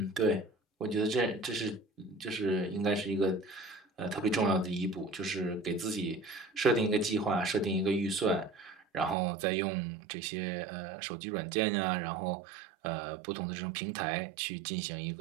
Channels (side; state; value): left; drops out; at 9.2 s